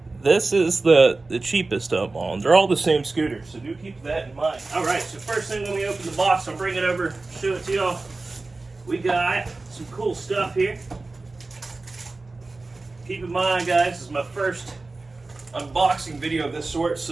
this is the cheapest of all. They're all the same scooter, so do keep that in mind. All right, so first thing when we open the box, I'll bring it over, show it to y'all. We got some cool stuff here. Keep in mind, guys, this is my first unboxing video of this sort,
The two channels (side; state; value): left; quieter; 3.4 dB